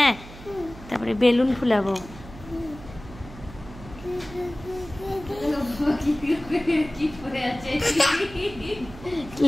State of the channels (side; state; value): right; noise; hum, 16 dB below the sound